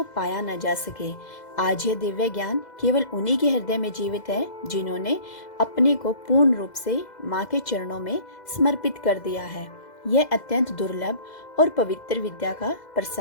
पाया न जा सके। आज यह दिव्य ज्ञान केवल उन्हीं के हृदय में जीवित है जिन्होंने अपने को पूर्ण रूप से माँ के चरणों में समर्पित कर दिया है। यह अत्यंत दुर्लभ और पवित्र विद्या का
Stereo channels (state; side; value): late; right; 2.0 ms